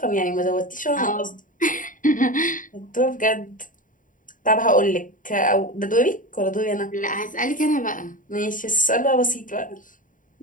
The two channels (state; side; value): late; right; 0.38 ms